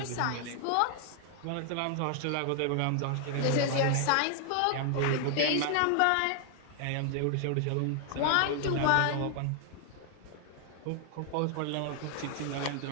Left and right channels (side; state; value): both; different; correlation 0.00